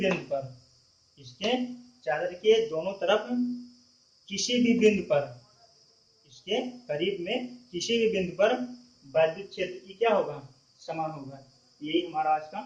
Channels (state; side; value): identical; both; correlation 1.00